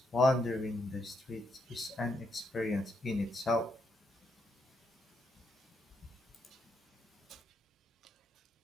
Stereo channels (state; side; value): normal; both; correlation 0.79